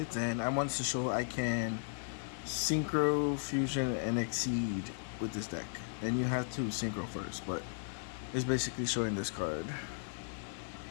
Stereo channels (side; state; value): right; silent; digital silence